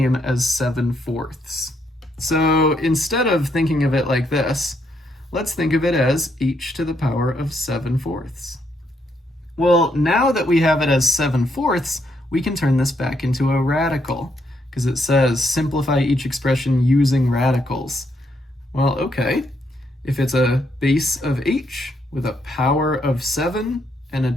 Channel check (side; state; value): both; normal; correlation 0.76